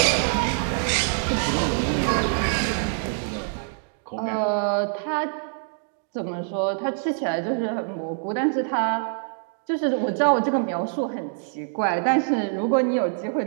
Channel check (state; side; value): silent; left; digital silence